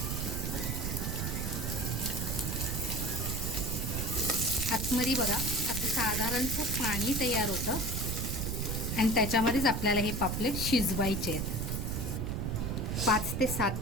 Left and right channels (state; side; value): noise; right; rumble, 1 dB below the sound